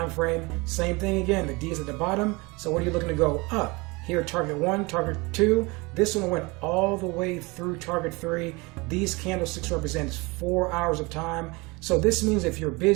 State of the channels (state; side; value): quieter; left; 25.5 dB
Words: frame. Same thing again, the D is at the bottom. So what are you looking to go up? Here, target 1, target 2. This one went all the way through target 3. These candlesticks represent 4 hours of time. So this means if you're